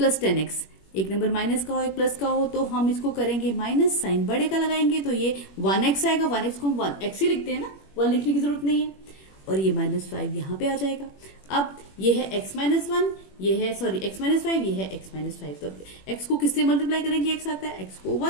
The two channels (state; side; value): late; right; 21 ms